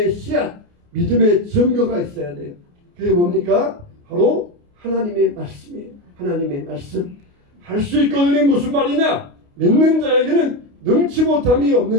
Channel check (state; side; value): late; left; 29 ms